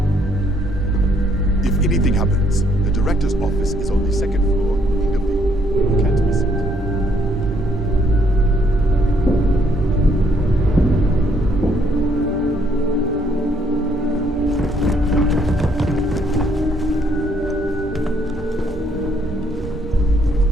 If anything happens, the director's office is on the second floor, in the view. You can't miss it.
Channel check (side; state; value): both; normal; correlation 0.69